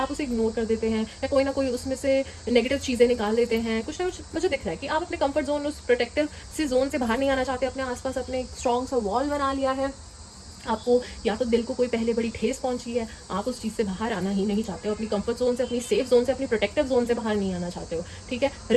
उसे इग्नोर कर देते हैं या कोई ना कोई उसमें से नेगेटिव चीज़ें निकाल देते हैं, कुछ ना कुछ मुझे दिख रहा है कि आप अपने कंफर्ट जोन, उस प्रोटेक्टिव से जोन से बाहर नहीं आना चाहते, अपने आसपास अपने एक स्ट्रॉन्ग सा वॉल बना लिया है। आपको या तो दिल को कोई पहले बड़ी ठेस पहुंची है, आप उस चीज़ से बाहर आना ही नहीं चाहते हो, अपनी कंफर्ट जोन से, अपनी सेफ जोन से, अपनी प्रोटेक्टिव जोन से बाहर नहीं आना चाहते हो, ठीक है,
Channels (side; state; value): both; identical; correlation 1.00